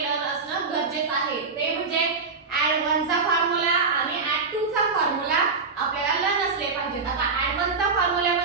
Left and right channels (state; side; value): quieter; left; 4.6 dB